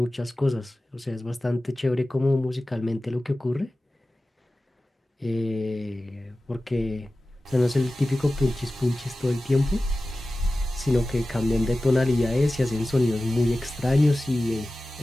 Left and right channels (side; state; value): both; normal; correlation 0.95